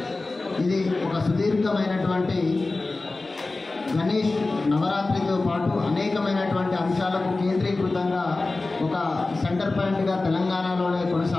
ఇది ఒక సుదీర్ఘమైనటువంటి గణేష్ నవరాత్రితో పాటు అనేకమైనటువంటి అంశాలకు కేంద్రీకృతంగా ఒక సెంటర్ పాయింట్గా తెలంగాణలోనే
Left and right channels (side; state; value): right; quieter; 3.3 dB